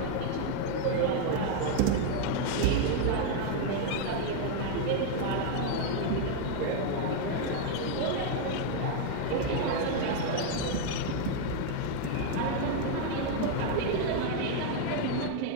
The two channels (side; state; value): both; different; correlation 0.00